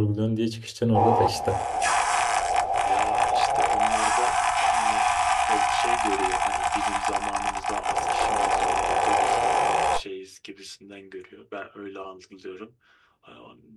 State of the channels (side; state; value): both; identical; correlation 1.00